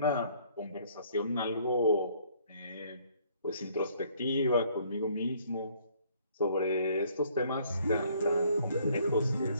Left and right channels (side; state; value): both; inverted; correlation -0.61